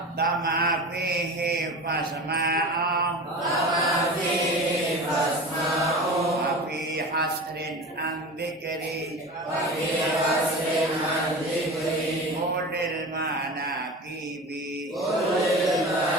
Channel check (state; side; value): normal; both; correlation 0.32